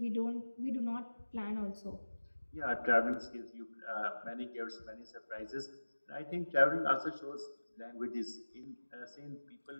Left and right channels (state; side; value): inverted; both; correlation -1.00